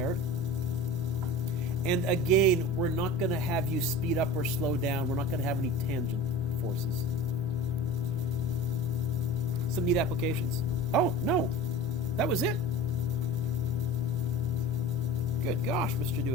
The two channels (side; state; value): both; normal; correlation 0.35